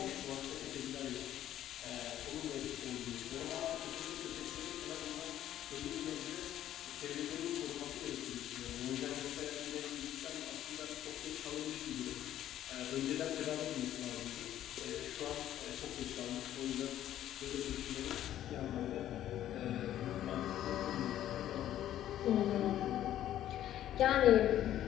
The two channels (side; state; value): right; quieter; 12.1 dB